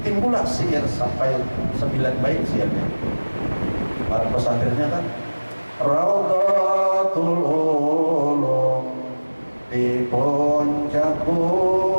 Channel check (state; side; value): inverted; both; correlation -1.00